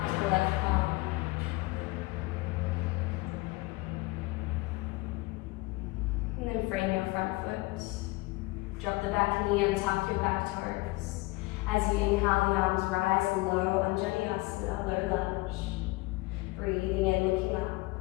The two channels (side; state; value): right; quieter; 22.7 dB